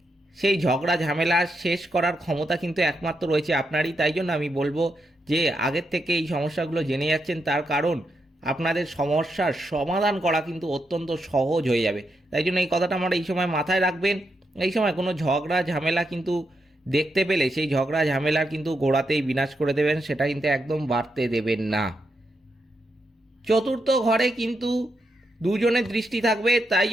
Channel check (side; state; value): both; normal; correlation 0.83